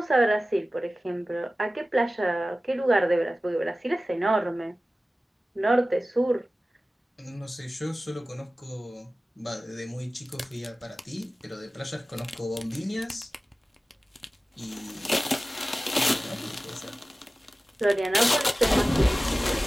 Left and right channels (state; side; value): normal; both; correlation 0.96